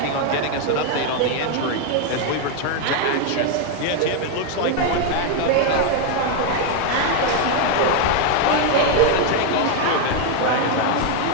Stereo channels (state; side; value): different; both; correlation 0.01